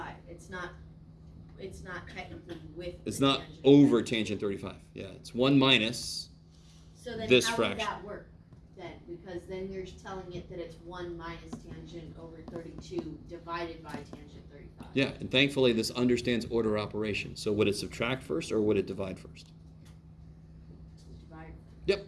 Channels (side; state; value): both; identical; correlation 1.00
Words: It's not technically with. It's the not tangent. over tangent 35. Yeah, it's 1 minus. So then this how fraction. would that work then? Because then you're telling it that it's 1 minus tangent over 32 divided by tangent 35. Yeah, and thankfully this understands order operation. So would it subtract first or would it divide first? Divide. Yep.